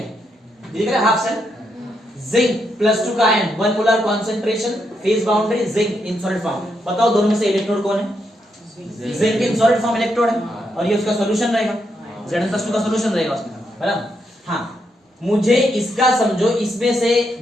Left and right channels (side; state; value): both; normal; correlation 0.80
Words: है, ये दिख रहा है हाफ सेल, जिंक +2 का ion, 1 molar concentration, phase boundary, zinc in solid form, बताओ दोनों में से इलेक्ट्रोड कौन है, zinc in solid form electrode है, और ये उसका सॉल्यूशन रहेगा, Zn+2 का सॉल्यूशन रहेगा उसमें, बराबर। हाँ, मुझे इसका समझो, इसमें से